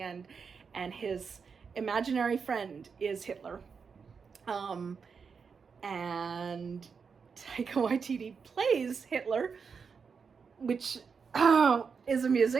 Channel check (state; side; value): quieter; left; 5.7 dB